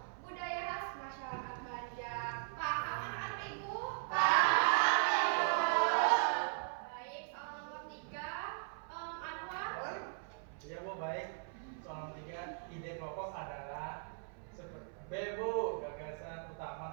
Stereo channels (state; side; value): silent; left; 52 dB below the other